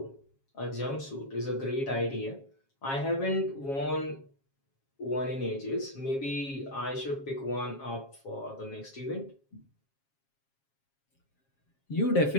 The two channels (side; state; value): right; late; 7.4 ms